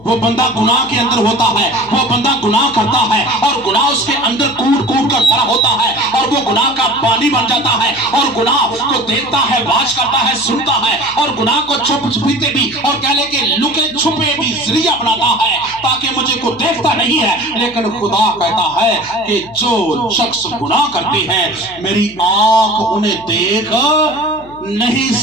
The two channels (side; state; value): left; noise; hum, 22 dB below the sound